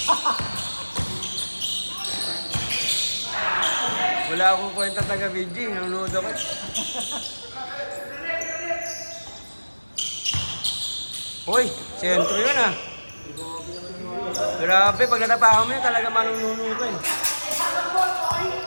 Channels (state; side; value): inverted; both; correlation -1.00